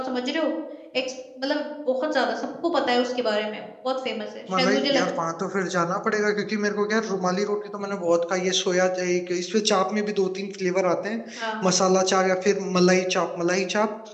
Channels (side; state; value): both; identical; correlation 1.00